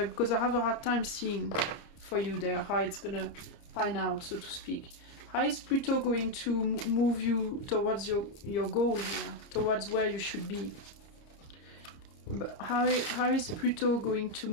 because I have a hard time seeing for you there how it's gonna pan out, so to speak. How is Pluto going to move you towards your goal here, towards where you should be? But how is Pluto going to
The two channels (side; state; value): right; late; 30 ms